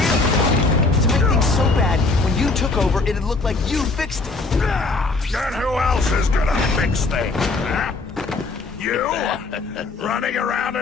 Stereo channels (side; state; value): right; quieter; 3.6 dB